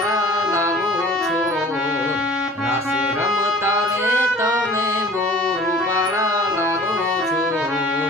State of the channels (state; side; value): normal; both; correlation 0.47